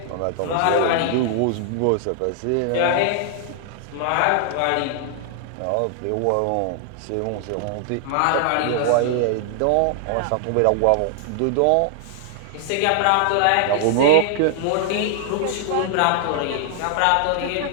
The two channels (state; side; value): different; both; correlation 0.00